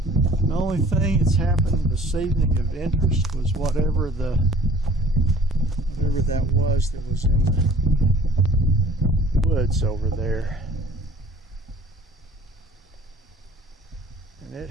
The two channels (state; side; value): normal; both; correlation 0.49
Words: The only thing that's happened this evening of interest was whatever that was in the woods over there. And it